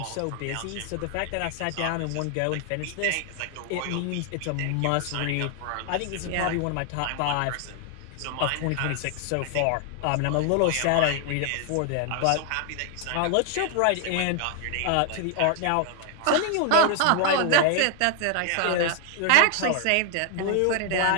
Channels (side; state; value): both; different; correlation 0.00